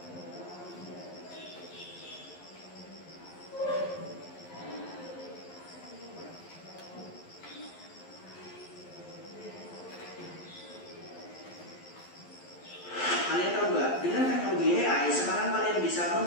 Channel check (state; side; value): late; right; 11 ms